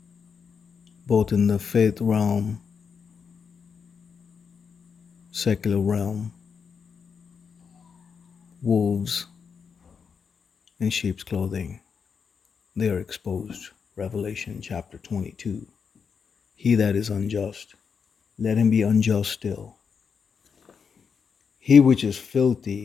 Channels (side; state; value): right; quieter; 6.2 dB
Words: both in the faith realm, secular realm, wolves in sheep's clothing. They are exposed. Revelation chapter 22. He that is unjust, let him be unjust still. He which is